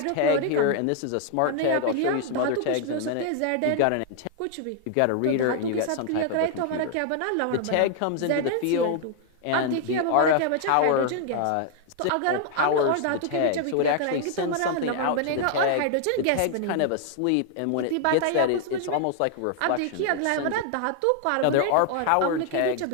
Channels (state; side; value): different; both; correlation 0.00